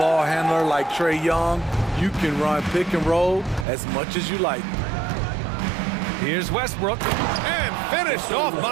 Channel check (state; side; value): drops out; left; at 3.7 s